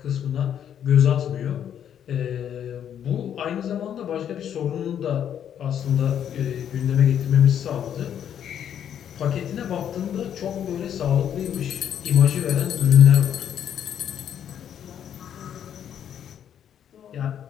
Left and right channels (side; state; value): right; quieter; 9.4 dB